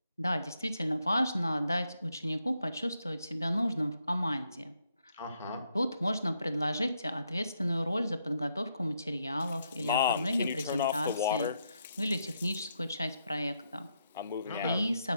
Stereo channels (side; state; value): both; inverted; correlation -0.78